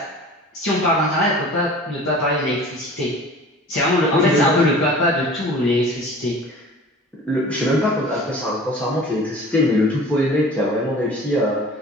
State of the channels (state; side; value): normal; both; correlation 0.43